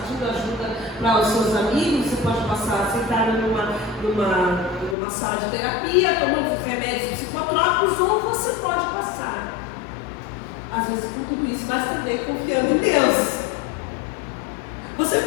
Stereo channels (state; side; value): drops out; right; at 5.0 s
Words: ajuda para os seus amigos, você pode passar sentado numa sala de terapia, tomando remédios psicotrópicos, ou você pode passar, às vezes com tudo isso, mas também confiando em Deus. Você